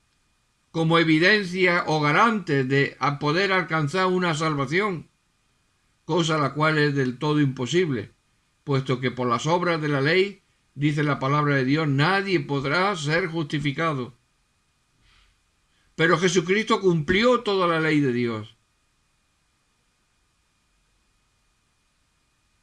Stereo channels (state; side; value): identical; both; correlation 1.00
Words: como evidencia o garante de poder alcanzar una salvación, cosa la cual es del todo imposible, puesto que por las obras de la ley, dice la palabra de Dios, nadie podrá ser justificado. Pero Jesucristo cumplió toda la ley de Dios.